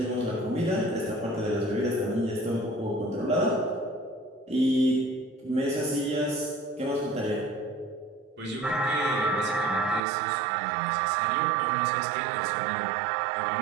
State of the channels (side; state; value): left; drops out; at 10.0 s